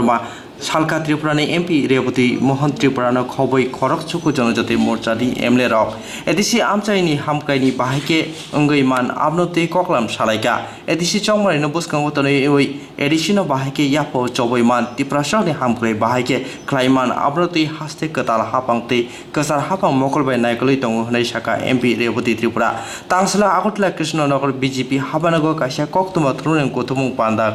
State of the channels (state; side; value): identical; both; correlation 1.00